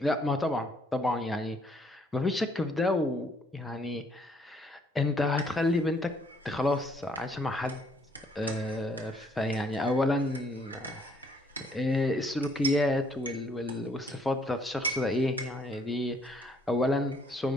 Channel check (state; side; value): normal; both; correlation 0.66